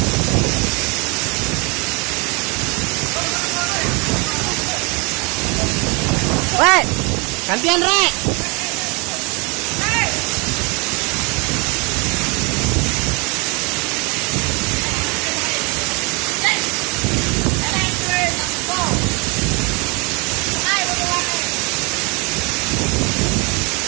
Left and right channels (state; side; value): quieter; left; 30.0 dB